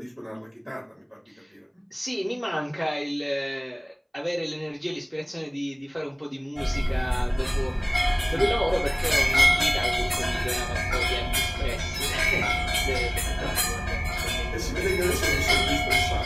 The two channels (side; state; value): both; identical; correlation 1.00